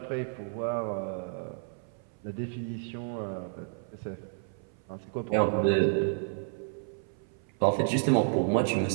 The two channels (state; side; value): silent; left; 56 dB below the other